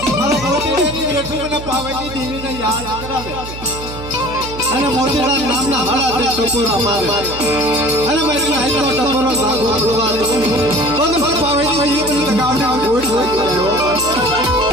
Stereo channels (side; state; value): right; noise; hum, 12 dB below the sound